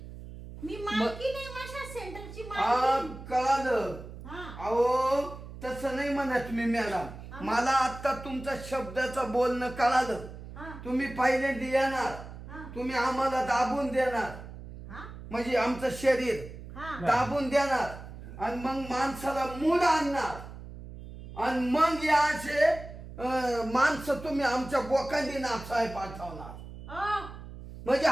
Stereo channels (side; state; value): right; noise; hum, 13 dB below the sound